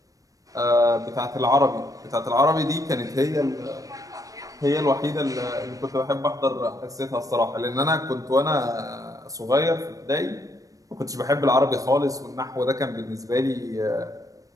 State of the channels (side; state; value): left; late; 0.17 ms